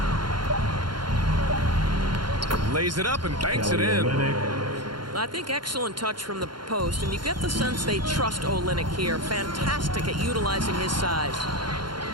Lays it up and banks it in. I think excellent touch from the post, and you get the sense they trust Olynyk here. Fantastic at utilizing his size.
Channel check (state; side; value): late; left; 0.72 ms